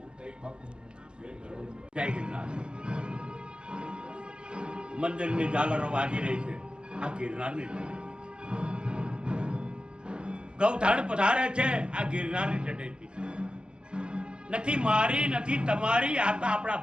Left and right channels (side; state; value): left; late; 0.049 ms